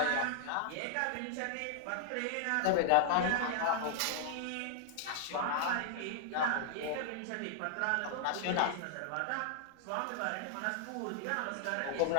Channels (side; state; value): both; different; correlation -0.01